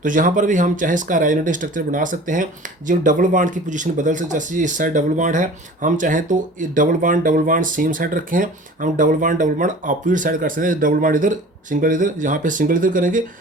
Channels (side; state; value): both; normal; correlation 0.43